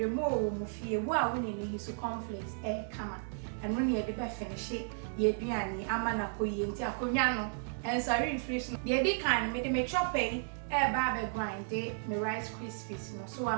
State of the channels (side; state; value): left; silent; digital silence